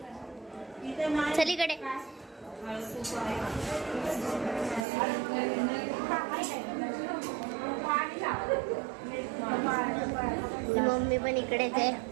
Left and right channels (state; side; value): drops out; left; at 4.9 s